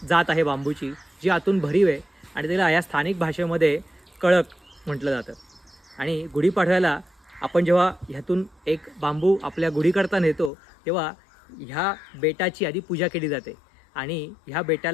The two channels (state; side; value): drops out; right; at 10.5 s